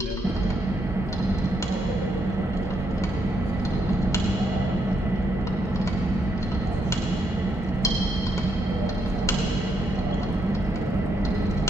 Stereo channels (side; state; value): both; normal; correlation 0.77